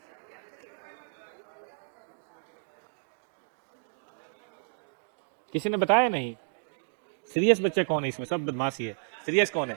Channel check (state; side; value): silent; left; digital silence